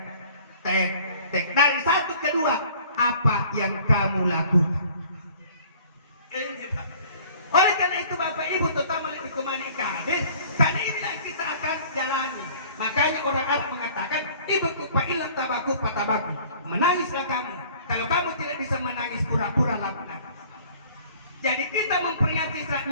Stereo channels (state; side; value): inverted; both; correlation -0.52